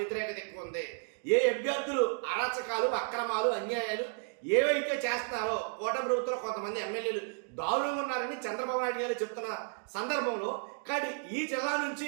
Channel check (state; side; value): silent; left; 56 dB below the other